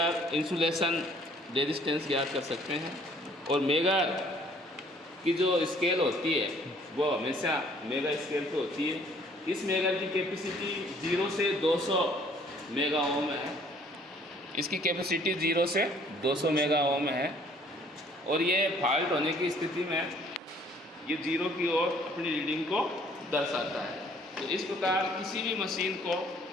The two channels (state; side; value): normal; both; correlation 0.59